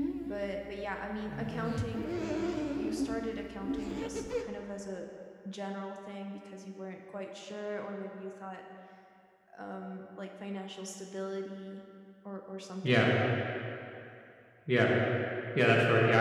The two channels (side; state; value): both; identical; correlation 1.00